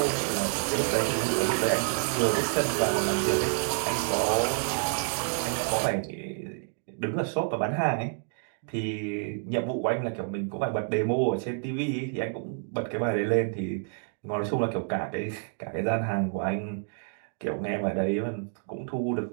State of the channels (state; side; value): silent; left; 59 dB below the other